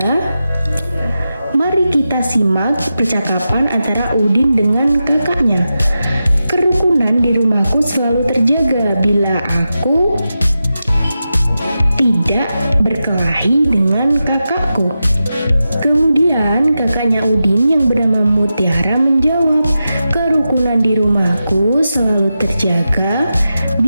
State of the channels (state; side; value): inverted; both; correlation -0.91